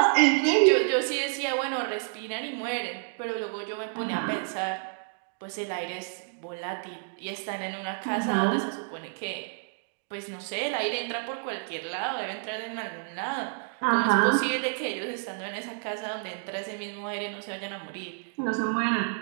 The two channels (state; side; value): silent; left; digital silence